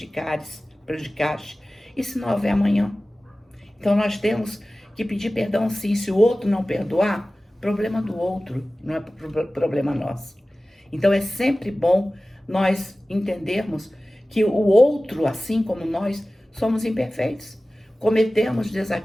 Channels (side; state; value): both; normal; correlation 0.96